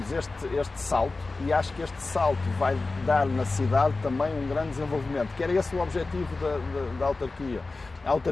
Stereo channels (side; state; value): right; quieter; 3.5 dB